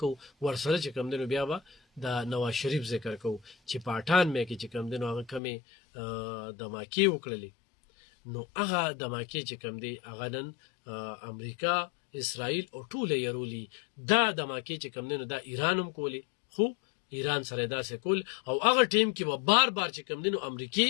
ورسره چې کوم دی نو بیا به د نواز شریف ذکر کو چې پاټان مې کې چې کوم دی نو هغه کمی د ماکی وکړلې نو هغه دماکې چې کوم دی هغه نن امریکا اسرائیل او ټول یې دا دماکې چې کوم دی نو دا ایران هم کولی خو ایران سره داسې کول او هغه ټیم کې به بار بار چې کوم دی نو امریکای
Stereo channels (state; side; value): drops out; right; at 5.4 s